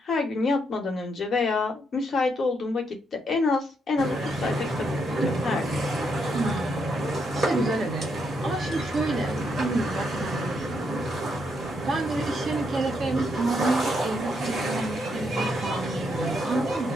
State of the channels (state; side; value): normal; both; correlation 0.77